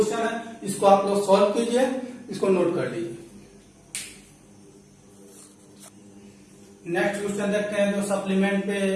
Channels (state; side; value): identical; both; correlation 1.00